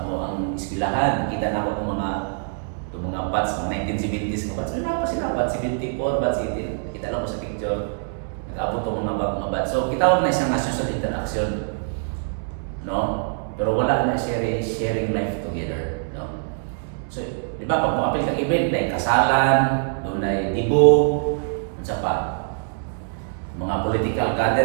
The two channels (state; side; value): silent; left; 63 dB below the other